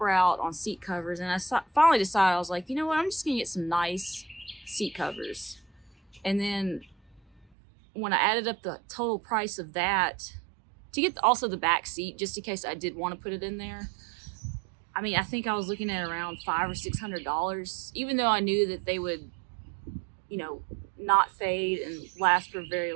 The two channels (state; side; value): drops out; left; at 7.5 s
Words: route on seat covers, and I finally decided, I was like, you know what, I'm just gonna get some nice seat covers. And then when I added up the total price of that, to get also the back seat, just in case I did want to put it in there, I think I was looking at around $500 or $600, even though I knew that they would, not fade and last for a very